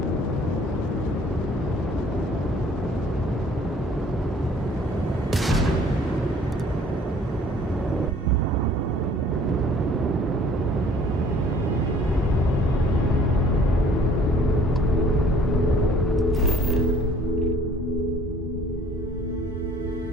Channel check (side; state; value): both; normal; correlation 0.54